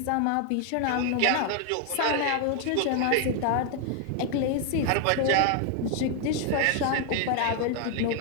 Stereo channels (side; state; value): both; different; correlation 0.00